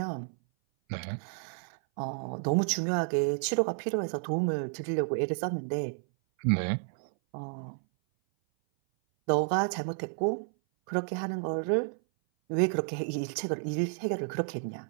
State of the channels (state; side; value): silent; left; 56 dB below the other